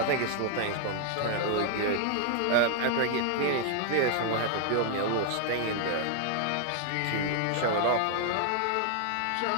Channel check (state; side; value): different; both; correlation 0.00